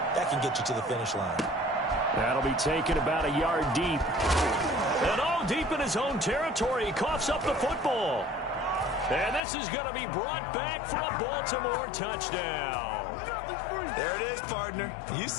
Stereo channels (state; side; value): drops out; right; at 9.4 s